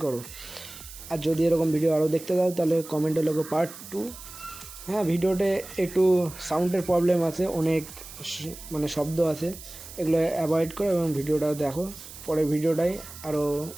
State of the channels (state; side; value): noise; right; hiss, 15 dB below the sound